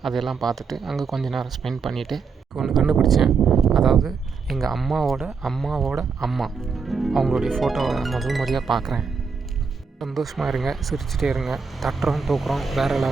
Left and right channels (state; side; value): quieter; left; 5.3 dB